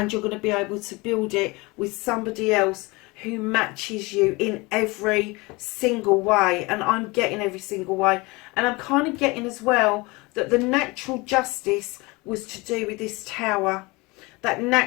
you're going to be able to build it with somebody else who matches you in every single way. And I'm getting every single way. And I'm kind of getting as well that the natural justice was to do with this tower. That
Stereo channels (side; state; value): right; quieter; 24.6 dB